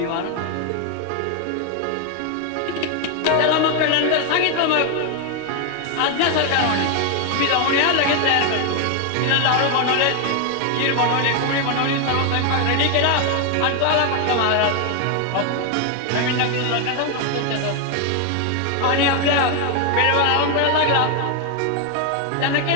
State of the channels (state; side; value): different; both; correlation 0.01